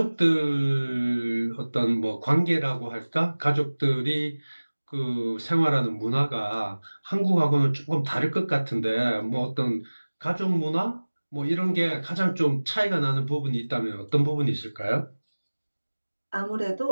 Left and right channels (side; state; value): both; inverted; correlation -1.00